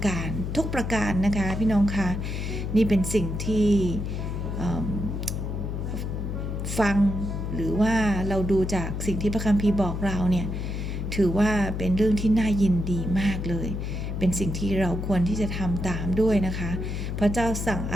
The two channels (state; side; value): noise; left; hum, 3 dB below the sound